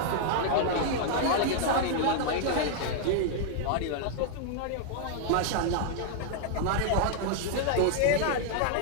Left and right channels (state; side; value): different; both; correlation -0.01